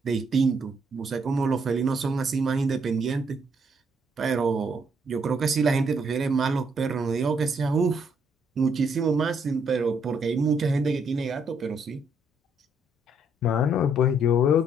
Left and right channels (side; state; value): both; normal; correlation 0.71